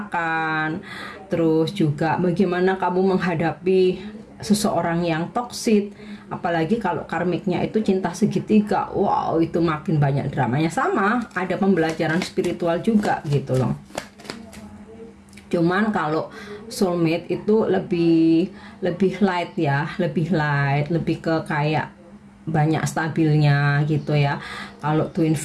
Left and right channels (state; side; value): identical; both; correlation 1.00